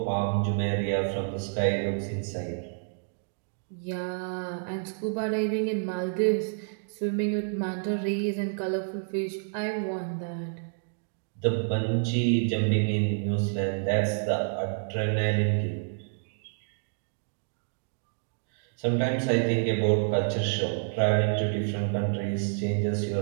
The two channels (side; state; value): left; silent; digital silence